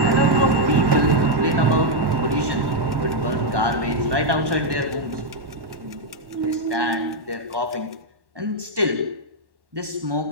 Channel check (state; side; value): late; left; 1.1 ms